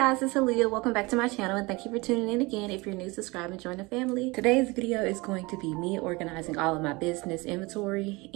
it's Aaliyah. Welcome back to my channel and thank you for tuning in again. If you're new, subscribe and join the family. Today's video is going to be me organizing all of my business inventory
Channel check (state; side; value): quieter; left; 24.5 dB